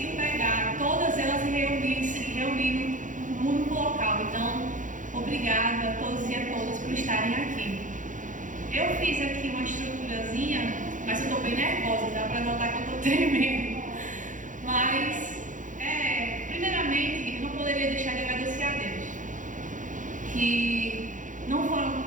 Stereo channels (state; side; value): late; left; 0.37 ms